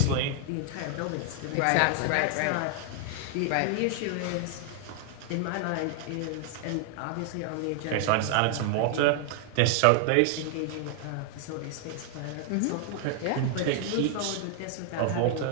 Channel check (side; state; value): both; different; correlation 0.00